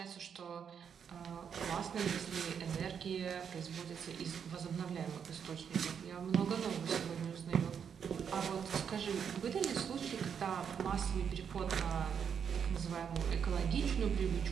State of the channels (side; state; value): left; quieter; 7.4 dB